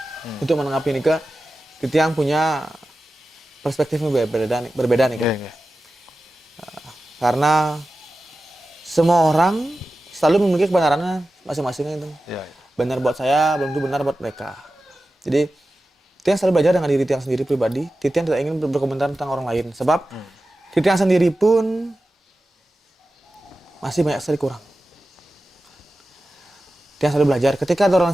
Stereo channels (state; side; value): normal; both; correlation 0.94